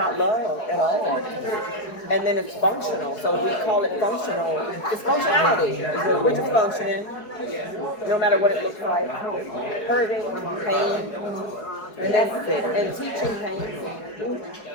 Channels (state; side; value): late; right; 4.7 ms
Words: love at all. And then it's functional. So we call it functional. It's functionality. We're just functioning, no matter what it looks like. Hurting, pain, and that's it. And teaching pain.